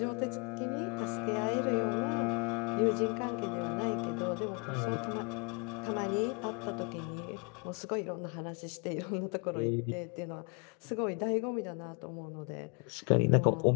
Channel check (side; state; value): right; quieter; 32.8 dB